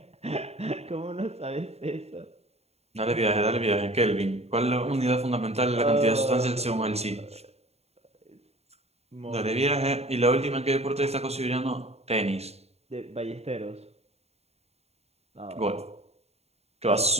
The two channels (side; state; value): left; late; 0.30 ms